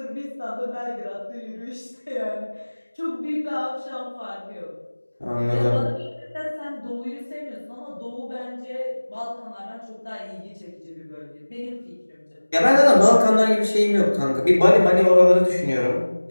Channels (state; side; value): inverted; both; correlation -1.00